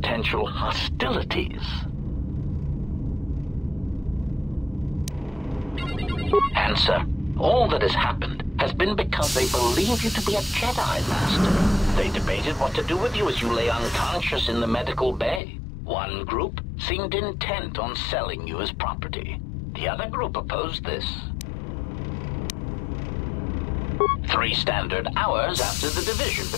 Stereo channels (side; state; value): right; drops out; at 15.4 s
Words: hostilities. Answer. All that has happened has been because they believe you to be a Jedi, Master. They debated what to do with you as you lay unconscious in the medical bay. One group seemed intent on selling you as property. The other group opposed this. 3 standard hours after the division